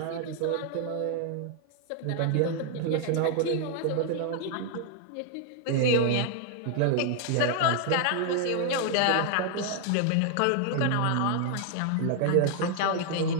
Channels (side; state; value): both; different; correlation 0.00